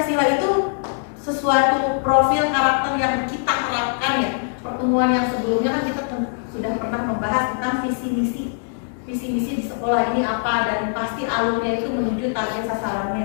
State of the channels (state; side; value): silent; right; digital silence